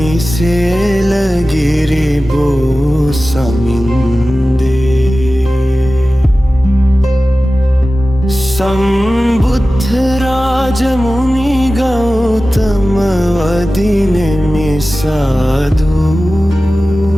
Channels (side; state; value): both; normal; correlation 0.96